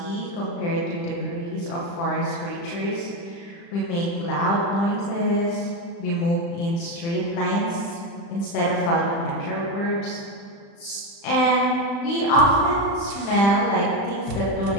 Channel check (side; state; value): right; late; 35 ms